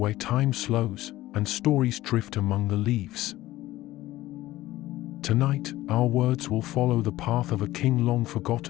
time slows and stories drift among the leaves. Tonight, our words will follow the path of a king long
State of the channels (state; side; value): quieter; right; 16.4 dB